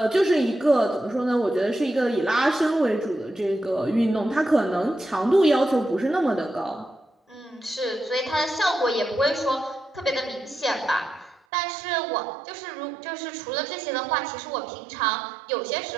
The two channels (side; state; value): left; drops out; at 11.4 s